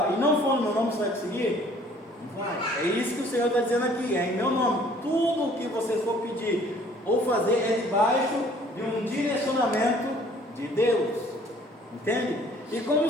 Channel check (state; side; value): normal; both; correlation 0.56